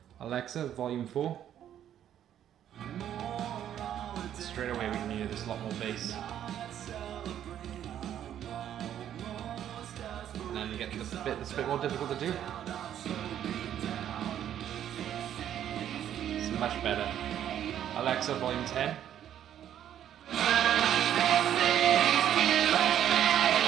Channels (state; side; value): quieter; left; 10.5 dB